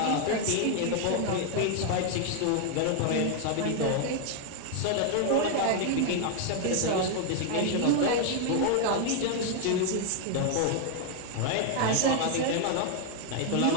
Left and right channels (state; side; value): different; both; correlation 0.00